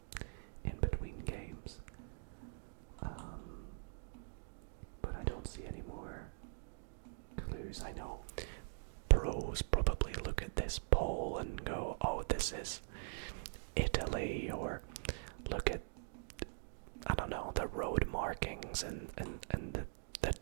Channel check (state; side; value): silent; left; digital silence